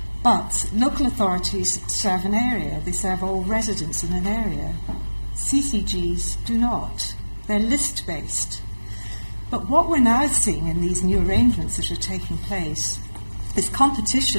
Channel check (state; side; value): inverted; both; correlation -1.00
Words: But local authorities serve an area. They serve all residents in an area. CCGs do not. They're list-based. But what we're now seeing in these new arrangements that are taking place is